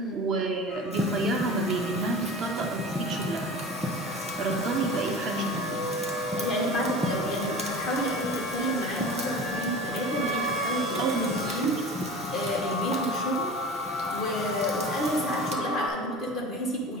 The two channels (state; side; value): normal; both; correlation 0.36